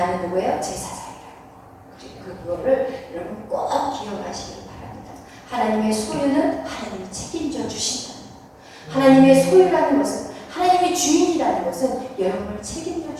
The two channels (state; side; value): identical; both; correlation 1.00